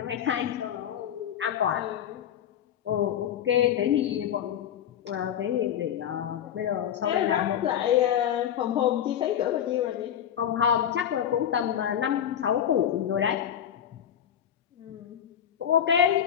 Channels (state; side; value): quieter; right; 9.7 dB